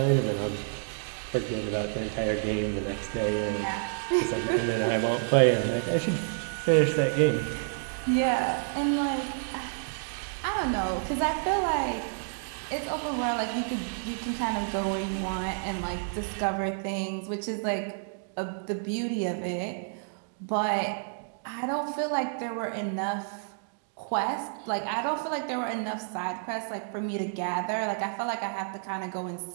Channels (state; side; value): silent; left; digital silence